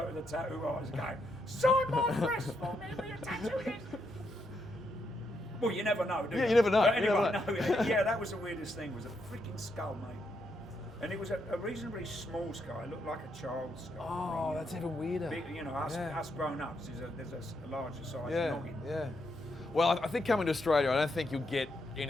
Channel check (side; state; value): both; normal; correlation 0.79